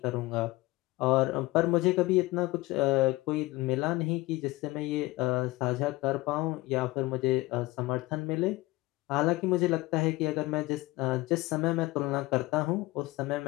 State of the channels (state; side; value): quieter; right; 20.1 dB